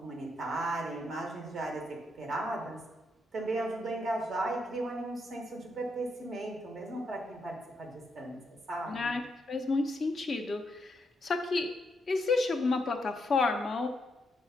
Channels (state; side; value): normal; both; correlation 0.79